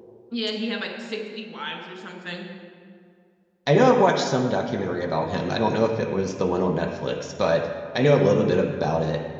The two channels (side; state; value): both; identical; correlation 1.00